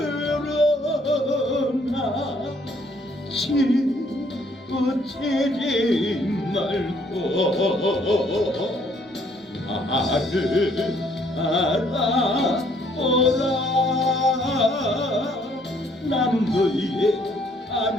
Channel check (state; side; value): normal; both; correlation 0.65